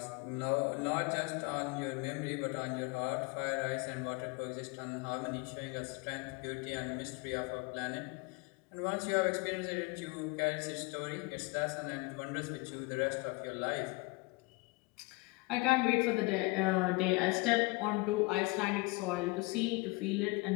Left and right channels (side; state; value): right; quieter; 25.9 dB